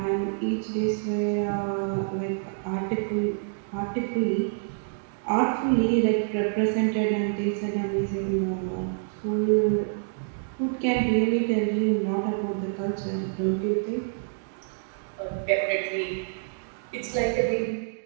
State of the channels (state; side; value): silent; left; digital silence